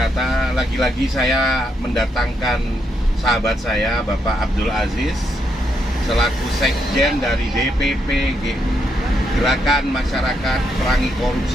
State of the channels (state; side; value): normal; both; correlation 0.79